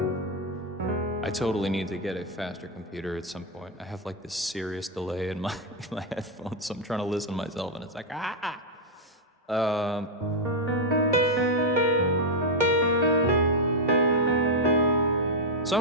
I totally need to get a faster computer at some point. I have like this serious delay in my headphones, so I'm trying to listen to myself, and it's like So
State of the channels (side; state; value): both; normal; correlation -0.02